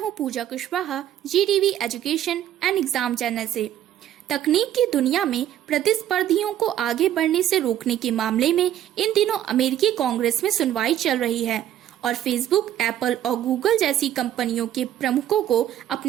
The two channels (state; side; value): quieter; left; 11.6 dB